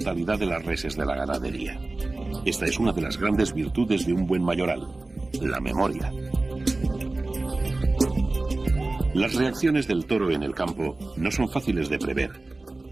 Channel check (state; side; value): quieter; left; 3.1 dB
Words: de las reses de la ganadería. Esta es una de las grandes virtudes de un buen mayoral, la memoria. Las reacciones del toro en el campo no son fáciles de prever,